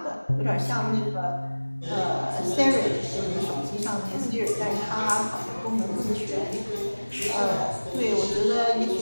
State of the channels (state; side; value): inverted; both; correlation -1.00